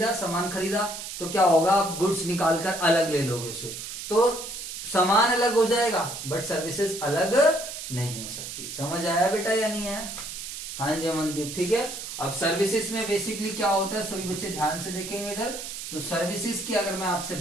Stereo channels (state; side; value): noise; right; hiss, 8 dB below the sound